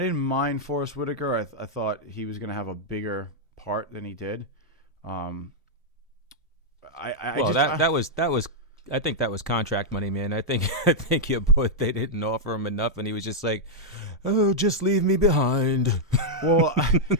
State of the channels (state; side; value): normal; both; correlation -0.05